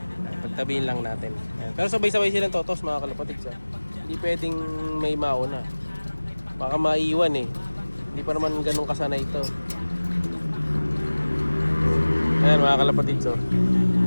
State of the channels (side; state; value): both; inverted; correlation -1.00